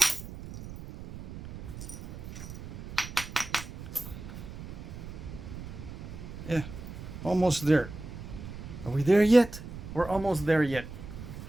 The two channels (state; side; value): noise; right; rumble, 11 dB below the sound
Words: Yeah, almost there. Are we there yet? We're almost there yet.